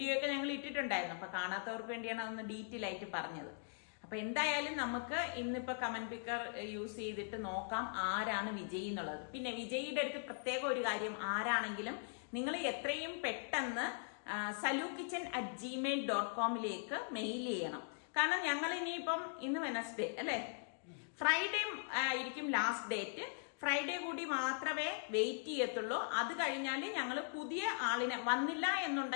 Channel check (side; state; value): right; silent; digital silence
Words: ഒക്കെ ഞങ്ങൾ ഇട്ടിട്ടുണ്ടായിരുന്നു. അപ്പൊ കാണാത്തവർക്ക് വേണ്ടിയാണ് അതൊന്ന് ഡീറ്റെയിൽ ആയിട്ട് പറഞ്ഞത്. അപ്പൊ എന്തായാലും നമുക്ക് ഇന്നിപ്പോ കമന്റ് പിക്കർ യൂസ് ചെയ്തിട്ട് നോക്കാം ആരാണ് വിജയി എന്നുള്ളത്. പിന്നെ വിജയിയുടെ അടുത്ത് പ്രത്യേക ഒരു കാര്യം, ആരാണെങ്കിലും നിങ്ങൾ എത്രയും പെട്ടെന്ന് salukitchen@gmail.com മെയിൽ ചെയ്യണം. കാരണം ഞങ്ങൾ ഇനിയിപ്പം ഇന്ന് വെനസ്ഡേ അല്ലേ, ഫ്രൈഡേ ആയിരിക്കും ലാസ്റ്റ് ഡേറ്റ്. ഫ്രൈഡേ കൂടി മാത്രമേ വെയിറ്റ് ചെയ്യത്തുള്ളൂ. അത് കഴിഞ്ഞാൽ ഞങ്ങൾ പുതിയ ആളിനെ വന്നില്ല